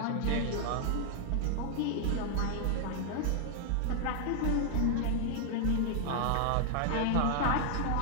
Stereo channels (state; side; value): different; both; correlation 0.00